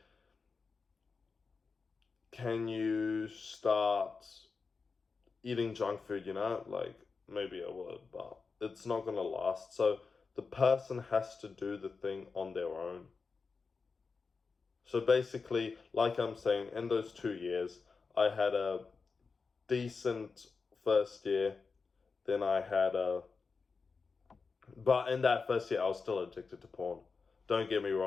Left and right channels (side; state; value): right; quieter; 4.7 dB